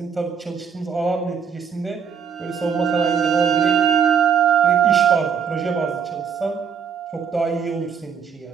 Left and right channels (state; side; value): quieter; left; 7.0 dB